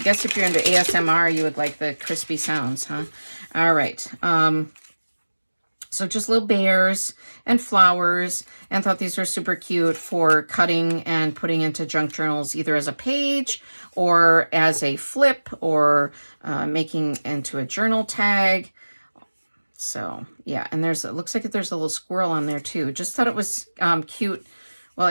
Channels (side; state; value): both; inverted; correlation -1.00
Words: guess if you're into ASMR, you would like the crispy sounds, huh? All right. So just little bears and flowers, and thought these were super cute for cutting and putting into junk journals, either as a page or as a flip, or making into a journal tag. So yeah, and it looks like there's a little squirrel on there too. Just thought it was cute. Well,